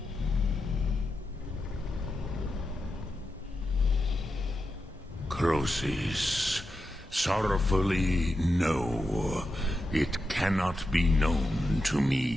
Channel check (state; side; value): normal; both; correlation 0.88